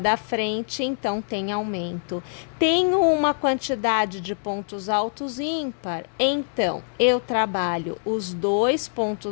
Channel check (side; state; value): right; silent; digital silence